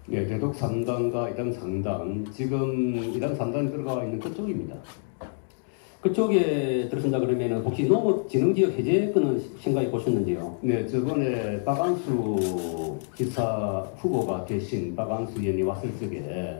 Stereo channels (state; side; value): silent; right; digital silence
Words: 네, 대덕 3단과 이당 3단, 지금 이당 3단이 들어가 있는 그쪽입니다. 그쪽에 들어선다 그러면 혹시 농업진흥지역 해제권은 생각해 보셨는지요? 네, 저번에 박안수 기사 후보가 되신 박안수 의원이 왔을